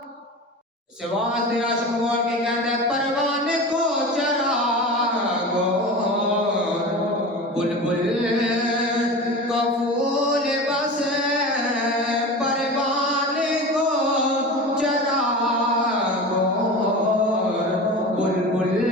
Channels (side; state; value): both; normal; correlation 0.31